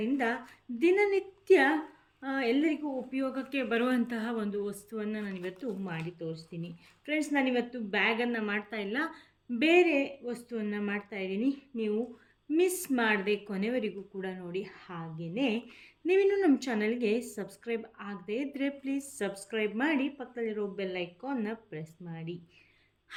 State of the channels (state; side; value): identical; both; correlation 1.00